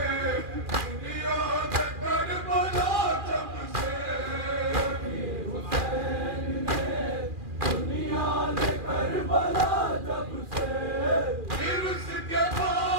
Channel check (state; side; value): late; left; 2.4 ms